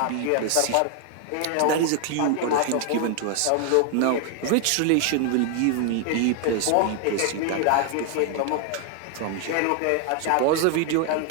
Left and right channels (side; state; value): both; different; correlation 0.00